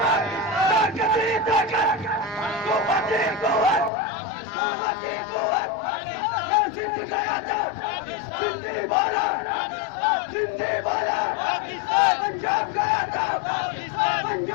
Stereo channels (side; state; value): right; drops out; at 3.9 s